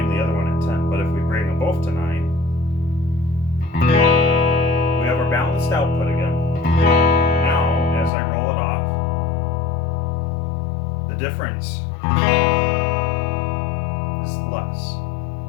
the other one at 10. But if we bring them both to 9, we have our balanced output again. Now, as I roll it off, the difference is less.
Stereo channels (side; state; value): right; drops out; at 8.1 s